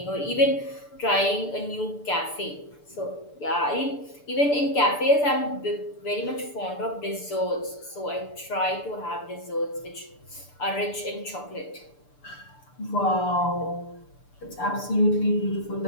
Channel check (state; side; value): late; right; 6.8 ms